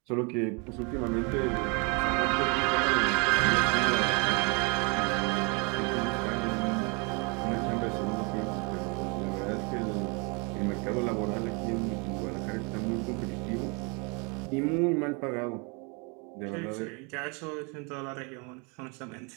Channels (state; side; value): quieter; left; 32.3 dB